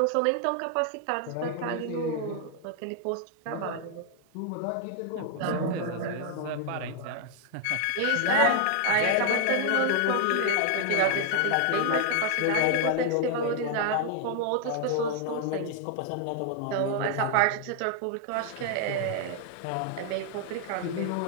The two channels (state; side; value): different; both; correlation 0.00